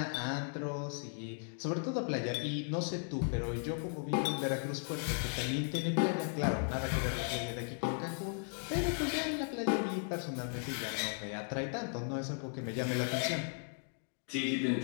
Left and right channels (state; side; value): silent; right; 54 dB below the other